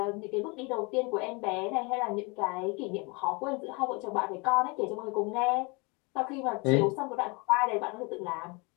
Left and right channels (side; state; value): right; quieter; 29.3 dB